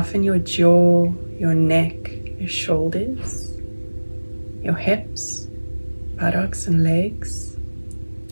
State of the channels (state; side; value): inverted; both; correlation -1.00